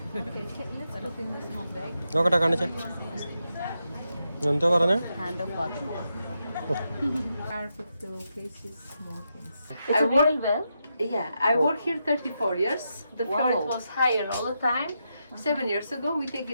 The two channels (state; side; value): inverted; both; correlation -0.84